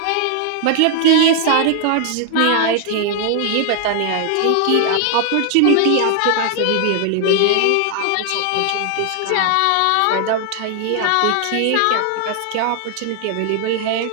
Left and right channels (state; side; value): different; both; correlation 0.00